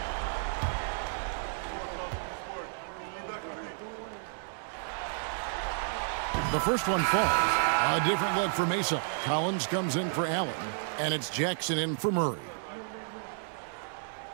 The first one falls. A different look for Mesa. Collins comes in for Allen, and it's Jackson in for Murray.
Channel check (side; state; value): left; silent; digital silence